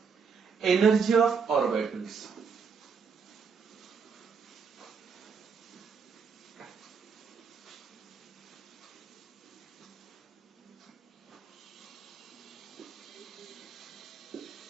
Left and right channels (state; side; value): quieter; left; 5.7 dB